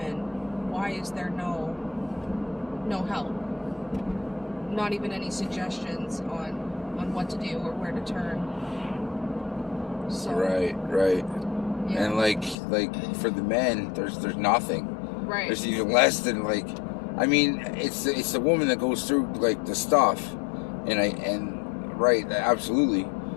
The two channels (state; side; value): drops out; right; at 12.6 s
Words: why is there no help? Not even any suggestions on what to do or where to turn. So, Right. yeah. And like for the men, there's nothing. Right. There's even less than, like, I mean, it's the woman that goes through like the stuff, and right, absolutely.